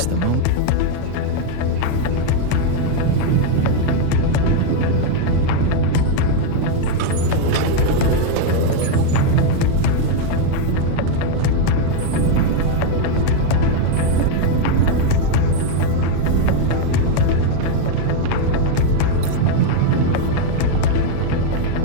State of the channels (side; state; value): both; different; correlation 0.00